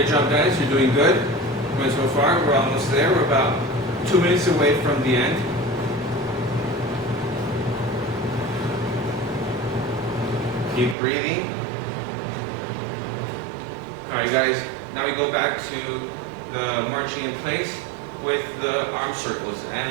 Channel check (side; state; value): left; drops out; at 11.0 s